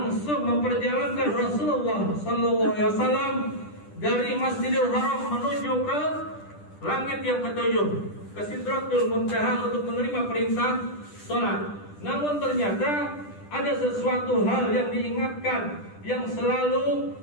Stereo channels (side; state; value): right; late; 10 ms